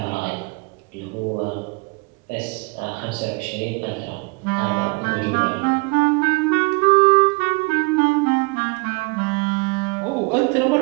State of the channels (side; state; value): left; quieter; 28.8 dB